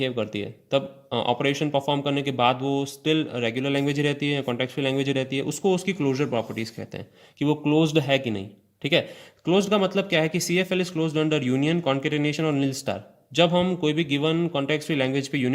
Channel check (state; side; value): identical; both; correlation 1.00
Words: करती है। तब ऑपरेशन परफॉर्म करने के बाद वो स्टिल रेगुलर लैंग्वेज ही रहती है, कॉन्टेक्स्ट फ्री लैंग्वेज ही रहती है, उसको उसकी क्लोजर प्रॉपर्टीज कहते हैं कि वो क्लोज्ड है कि नहीं, ठीक है। क्लोज्ड का मतलब क्या है कि CFL is closed under union, concatenation और नील स्टार। जब हम कोई भी गिवन कॉन्टेक्स्ट फ्री लैंग्वेज पे